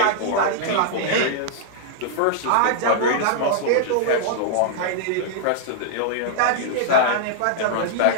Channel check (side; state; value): both; different; correlation -0.01